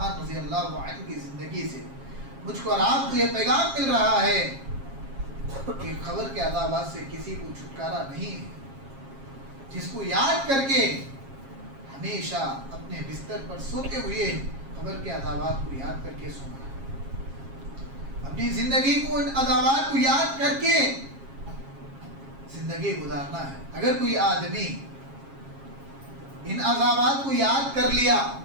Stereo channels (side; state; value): left; late; 7.4 ms